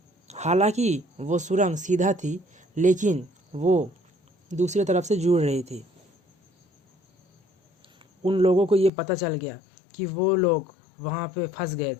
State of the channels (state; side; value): drops out; right; at 8.9 s